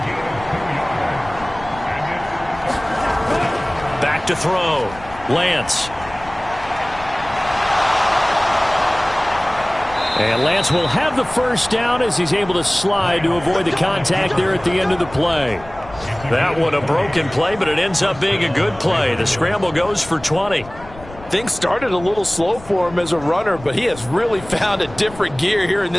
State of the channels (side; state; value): left; noise; rumble, 17 dB below the sound